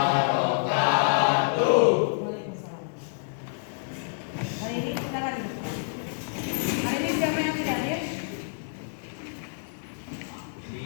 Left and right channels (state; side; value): silent; right; digital silence